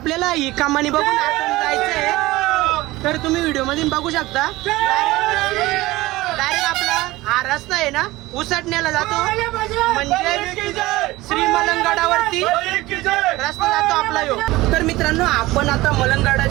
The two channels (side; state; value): left; quieter; 19.0 dB